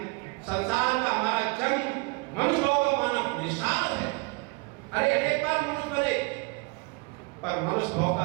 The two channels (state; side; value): quieter; left; 29.1 dB